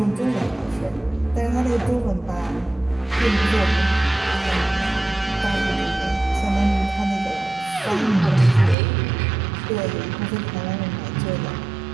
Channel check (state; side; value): drops out; left; at 8.8 s